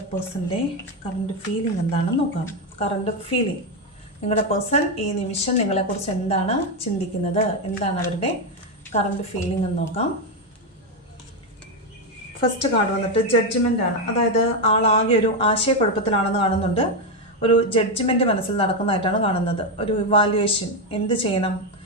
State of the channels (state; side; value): normal; both; correlation 0.07